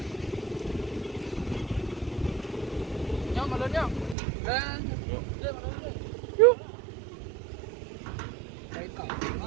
Nhau mà lớn nhau. Lên. Lên mà lớn lên. Yuk. Đấy cỏ. Mà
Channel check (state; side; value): drops out; left; at 4.2 s